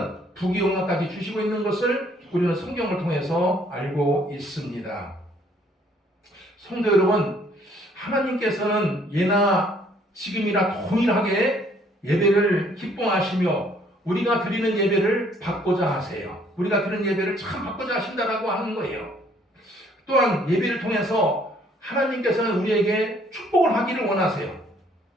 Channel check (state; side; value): normal; both; correlation 0.62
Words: 부귀영화까지 주시고 있는 것을 우리는 성경을 통해서 알고 있습니다. 성도 여러분, 하나님께서는 예나 지금이나 동일하게 예배를 기뻐하시며 우리가 드리는 예배를 받고자 하세요. 우리가 드리는 예배를 참 받고자 하신다라고 하는 거예요. 또한 예배를 통해서 하나님께서는 우리에게 축복을 하기를 원하세요.